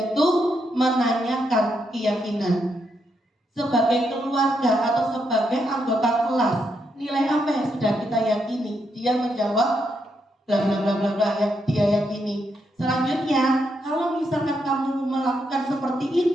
menanyakan keyakinan. Sebagai keluarga atau sebagai anggota kelas, nilai apa yang sudah kita yakini? Dia menjawab bla bla bla bla bla yang dia yakini. Selanjutnya, kalau misalkan kamu melakukan seperti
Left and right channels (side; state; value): both; normal; correlation 0.79